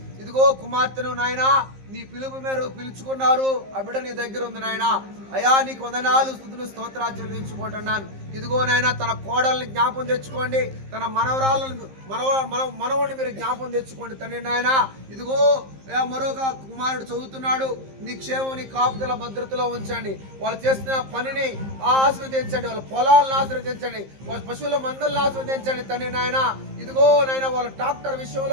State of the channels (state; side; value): late; left; 15 ms